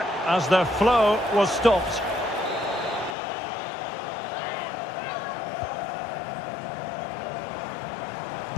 as the flow was stopped.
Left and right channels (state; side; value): drops out; right; at 3.2 s